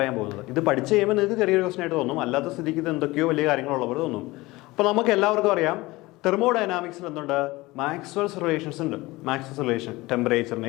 പോകുന്നത്. ഇത് പഠിച്ച് കഴിയുമ്പോൾ നിങ്ങൾക്ക് ചെറിയൊരു ക്വസ്റ്റ്യൻ ആയിട്ട് തോന്നും, അല്ലാത്ത സ്ഥിതിക്ക് ഇത് എന്തൊക്കെയോ വലിയ കാര്യങ്ങളുള്ളവർ തോന്നും. അപ്പോൾ നമുക്ക് എല്ലാവർക്കും അറിയാം, തെർമോഡൈനാമിക്സിൽ എന്തുണ്ട്, മാക്സ്വെൽസ് റിലേഷൻസ് ഉണ്ട്. മാക്സ്വെൽസ് റിലേഷൻ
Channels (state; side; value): quieter; right; 20.6 dB